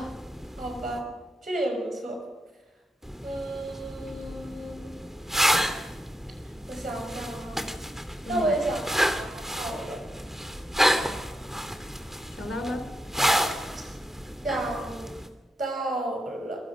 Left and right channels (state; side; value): normal; both; correlation 0.84